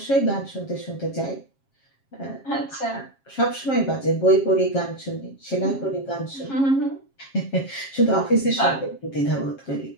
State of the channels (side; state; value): right; late; 7.4 ms